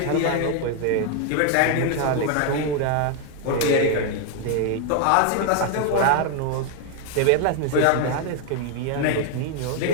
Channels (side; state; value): both; different; correlation 0.00